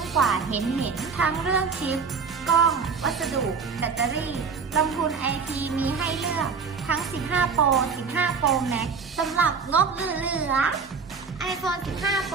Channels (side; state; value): left; quieter; 5.5 dB